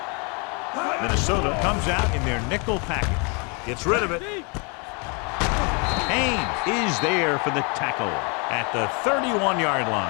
Minnesota comes out in their nickel package. Gets rid of it. Haynes is there for the tackle at the 31-yard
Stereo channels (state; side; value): quieter; right; 32.8 dB